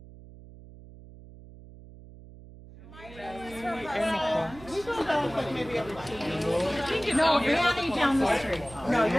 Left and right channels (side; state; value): right; noise; hum, 18 dB below the sound